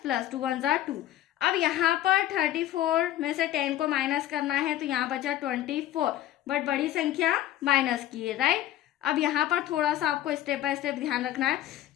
प्लस 2 1 2। अब यहाँ पर 34 में से 10 को माइनस करना है तो यहाँ बचा 24, बट बड़ी संख्या माइनस की है, राइट। अब यहाँ पर थोड़ा सा आपको स्टेप बाय स्टेप ध्यान रखना है।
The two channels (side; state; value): right; quieter; 13.3 dB